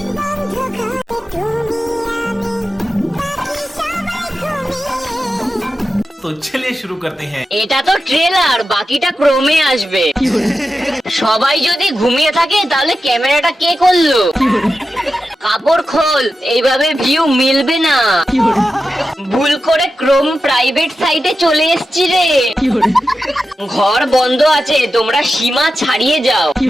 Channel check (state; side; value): normal; both; correlation 0.91